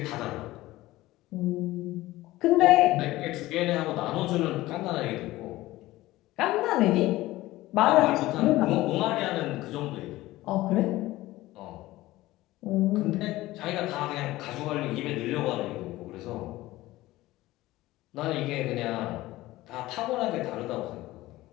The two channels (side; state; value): right; quieter; 17.5 dB